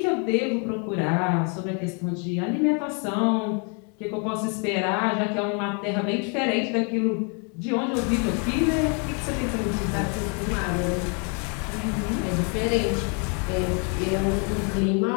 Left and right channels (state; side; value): quieter; right; 37.5 dB